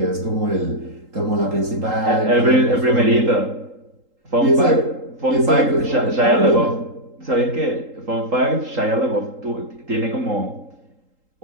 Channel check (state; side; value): late; left; 3.8 ms